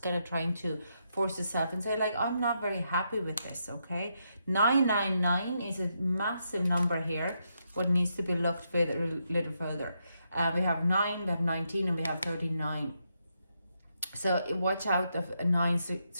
kind of trying to force yourself and say like, I'm not very happy with this, okay? 999 is a massive number here, what needs to be looked at a little further. We have 9, we have 19, and we have 39. So watch out of 9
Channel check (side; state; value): both; inverted; correlation -0.81